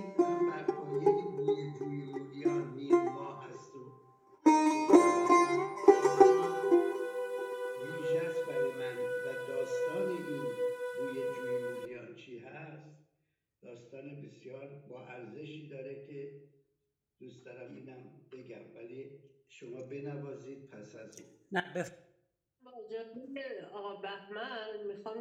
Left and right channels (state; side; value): identical; both; correlation 1.00